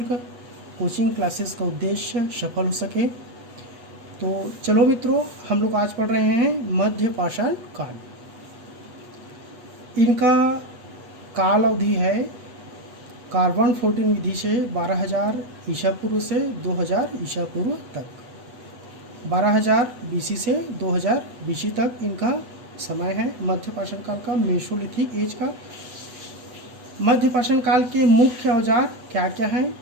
कोचिंग क्लासेस का उद्देश्य सफल हो सके। तो चलो मित्रों, हम लोग आज पढ़ रहे हैं मध्य पाषाण काल। इनका काल अवधि है कार्बन 14 विधि से 12,000 ईसा पूर्व से 2,000 ईसा पूर्व तक, 12,000 बीसी से 2,000 बीसी तक इनका समय है मध्य पाषाण काल का, मेसोलिथिक एज का। मध्य पाषाण काल के मुख्य औजार क्या क्या हैं?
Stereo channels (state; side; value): late; left; 8.1 ms